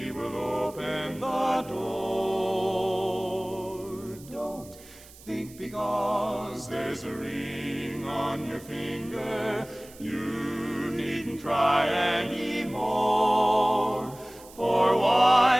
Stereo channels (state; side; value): noise; right; hiss, 21 dB below the sound